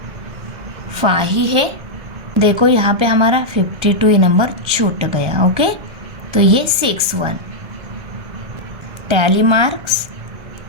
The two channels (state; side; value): late; left; 1.3 ms